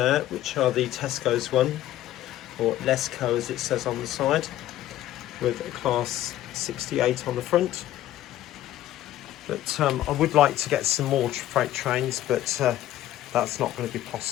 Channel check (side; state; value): right; quieter; 13.5 dB